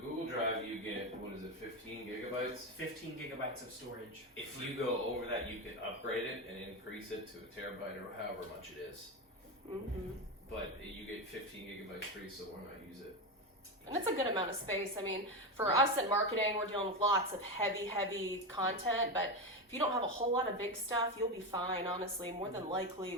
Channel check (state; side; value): normal; both; correlation 0.15